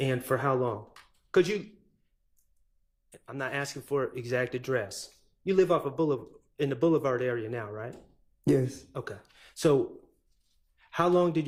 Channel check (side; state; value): both; identical; correlation 1.00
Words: for how long? I'm not asking for exact address. You live off of in the Boulevard area now, right? Yes. Okay. So how long did